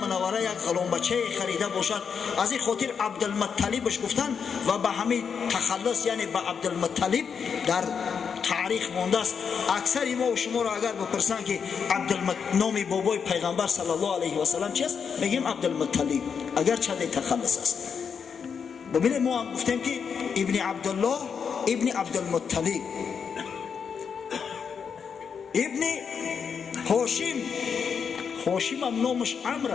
یک غلام بچه خریده باشد. از این خاطر عبدالمطلبش گفتن و به همین تخلص یعنی به عبدالمطلب در تاریخ مانده است. اکثر ما و شما را اگر بپرسن که نام بابای پیغمبر صلی الله علیه و سلم چیست، میگیم عبدالمطلب، اگر چه تخلص است. ببینید ما هم گفتیم که ابن عبدالله ابن عبدالمطلب. ابن هاشم، هاشم هم نامش عمرو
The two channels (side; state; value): right; quieter; 6.5 dB